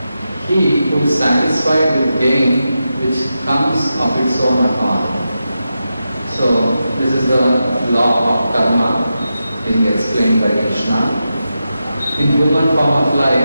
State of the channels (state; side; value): inverted; both; correlation -0.90